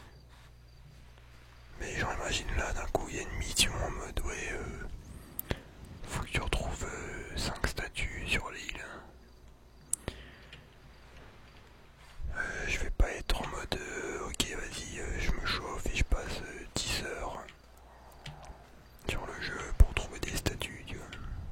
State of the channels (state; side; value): identical; both; correlation 1.00